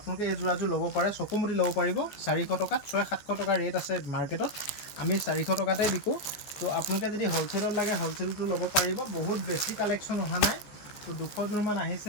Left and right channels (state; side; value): late; right; 14 ms